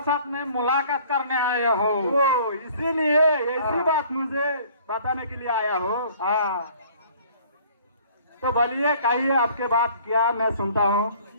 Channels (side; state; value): both; inverted; correlation -0.54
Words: में मुलाकात करने आया हो। ओ, इसीलिए ऐसी बात मुझे बताने के लिए आया हो। हाँ तो बोलिए, कहिए आपके बात क्या, मैं सुनता हूँ।